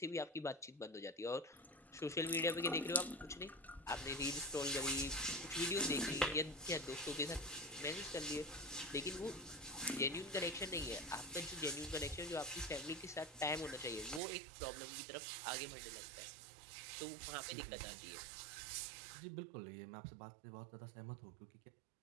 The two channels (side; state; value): left; drops out; at 14.2 s